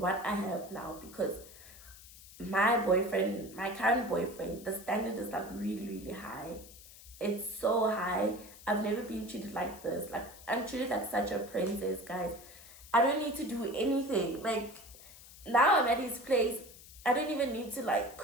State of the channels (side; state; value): left; noise; hiss, 19 dB below the sound